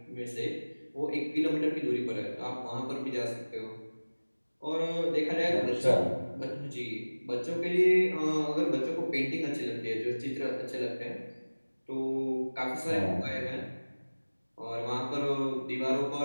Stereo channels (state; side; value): inverted; both; correlation -1.00